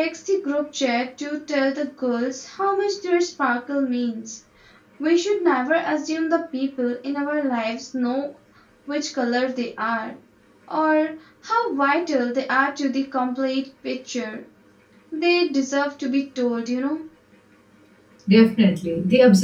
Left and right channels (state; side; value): identical; both; correlation 1.00